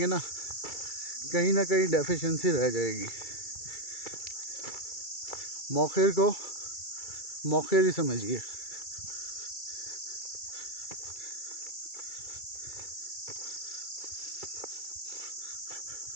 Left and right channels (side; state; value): right; late; 2.3 ms